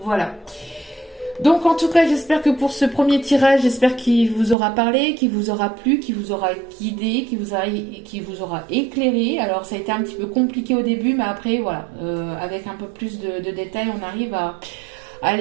voilà. Donc en tout cas, j'espère que pour ce premier tirage, j'espère qu'il vous aura parlé, qu'il vous aura plu, qu'il vous aura guidé, qu'il vous aura éclairé. Alors ça a été un petit peu compliqué au début, mais après voilà, avec un peu plus de détails, on arrive à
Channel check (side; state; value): left; drops out; at 4.5 s